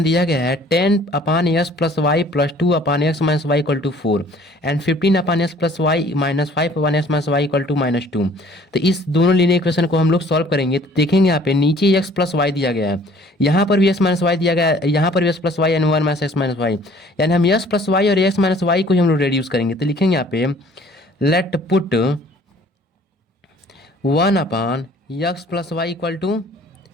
दिया गया है 10/s plus y plus 2/x minus y equal to 4 and 15/s plus y minus 5/s minus y equal to -2। तो इस दोनों लीनियर इक्वेशन को हम लोग सॉल्व करेंगे, तो देखेंगे यहाँ पे नीचे x प्लस वाई दिया गया है, यहाँ पर भी x माइनस वाई दिया गया है, यहाँ पर भी x plus y and 1 minus x minus y, यानी हम x प्लस वाई और x माइनस वाई को ही हम लोग रेड्यूस करेंगे। तो लिखेंगे यहाँ पे let put 1/x plus y equal to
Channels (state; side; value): normal; both; correlation 0.54